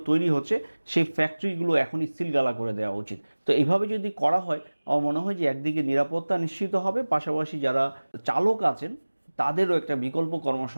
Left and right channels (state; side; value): inverted; both; correlation -1.00